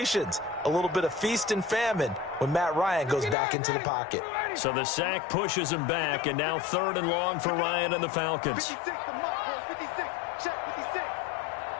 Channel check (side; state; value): right; drops out; at 3.4 s